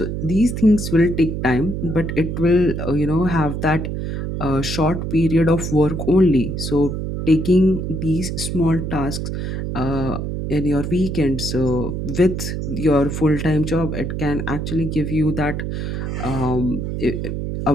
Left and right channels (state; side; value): noise; right; hum, 3 dB below the sound